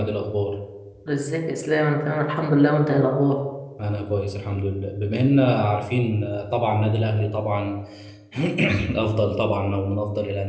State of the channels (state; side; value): identical; both; correlation 1.00